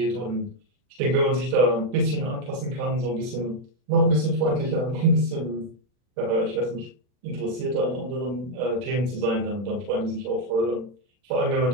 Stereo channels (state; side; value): late; left; 40 ms